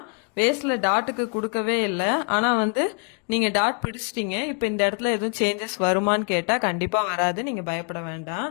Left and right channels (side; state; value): right; quieter; 39.5 dB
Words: வேஸ்ட்ல டாட்டுக்கு கொடுக்கவே இல்லை, ஆனா வந்து நீங்க டாட் பிடிச்சிட்டீங்க, இப்ப இந்த இடத்துல எதுவும் சேஞ்சஸ் வருமான்னு கேட்டா கண்டிப்பா வராது, நீங்க பயப்பட வேண்டாம்.